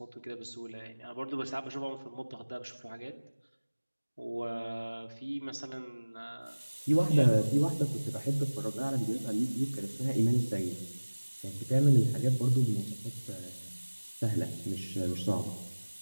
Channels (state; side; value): inverted; both; correlation -1.00